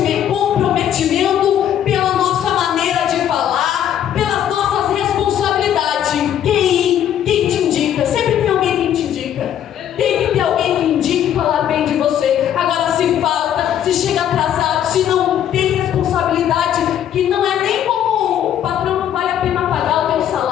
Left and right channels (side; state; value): right; quieter; 10.3 dB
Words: pela nossa maneira de falar, pelas nossas responsabilidades. Quem te indica? Sempre tem alguém que te indica. Tem que ter alguém que indique falar bem de você. Agora, se falta, se chega atrasado, se não tem responsabilidade, que não é nem como o patrão, não vale a pena pagar o teu